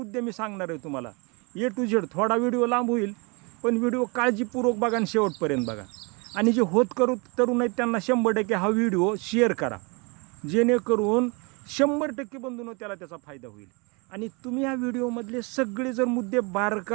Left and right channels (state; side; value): quieter; left; 30.4 dB